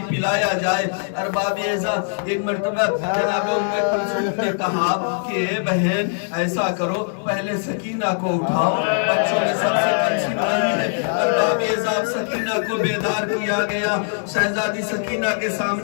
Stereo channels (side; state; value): right; silent; 63 dB below the other